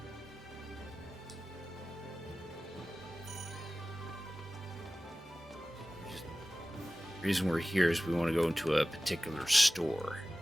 The reason we're here is we want to go into a particular store.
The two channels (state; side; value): normal; both; correlation 0.97